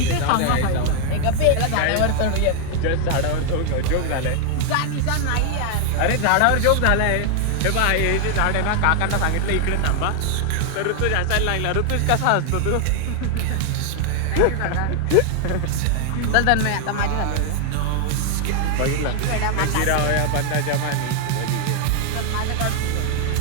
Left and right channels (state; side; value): different; both; correlation 0.00